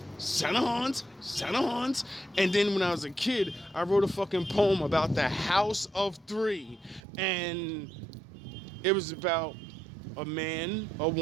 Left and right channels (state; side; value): drops out; left; at 7.0 s